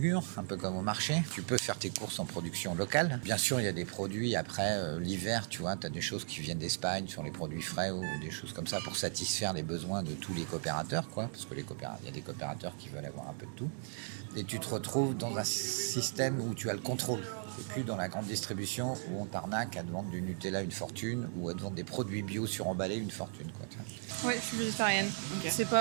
un peu comme au marché. Tu peux faire tes courses en production locale. Bien sûr, il y a des produits après l'hiver, tu vois, tu as des choses qui viennent d'Espagne sur les produits frais ou des choses comme ça pour satisfaire les besoins de tous les coopérateurs, quoi, parce que il y a des coopérateurs qui veulent avoir un peu de tout. Et tu te retrouves dans un système où tu as le contrôle. C'est plus dans la grande distribution où on t'arnaque à te vendre du Nutella une fortune ou à te vendre des produits bio suremballés une fortune, quoi. Oui, je suis végétarienne. Ok.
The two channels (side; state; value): left; silent; 53 dB below the other